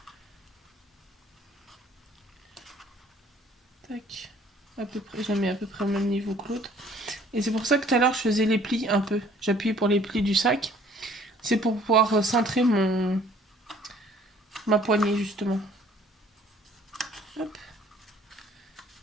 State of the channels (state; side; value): normal; both; correlation 0.56